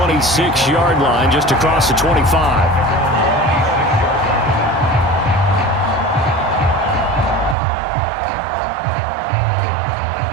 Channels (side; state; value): left; drops out; at 7.6 s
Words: line, just across the 25.